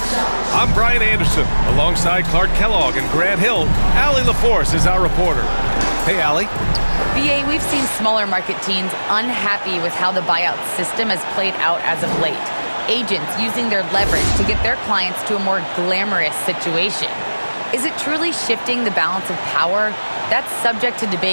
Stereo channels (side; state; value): both; inverted; correlation -1.00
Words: I'm Brian Anderson, alongside Clark Kellogg and Grant Hill. Allie LaForce is our reporter. Hey, Allie. BA, we've seen smaller market teams unhappy with how the buyout system has played out as of late. Agents using their leverage to get their clients to a more glamorous situation. Is it truly shifting the balance of power? That's subject to